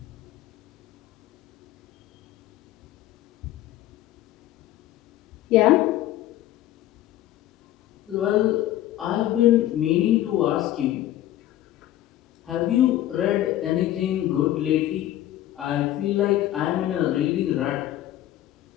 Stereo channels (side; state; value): right; quieter; 13.6 dB